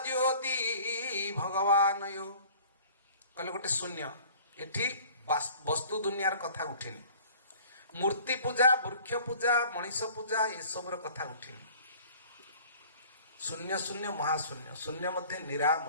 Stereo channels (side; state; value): both; inverted; correlation -0.49